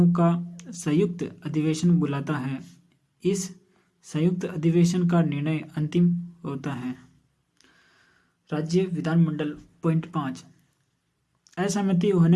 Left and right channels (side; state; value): both; identical; correlation 1.00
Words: का संयुक्त अधिवेशन बुलाता है। इस संयुक्त अधिवेशन का निर्णय अंतिम होता है। राज्य विधानमंडल पॉइंट 5, असहमति